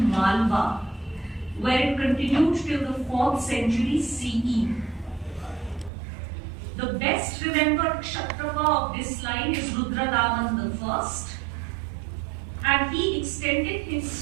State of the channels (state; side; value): drops out; left; at 5.9 s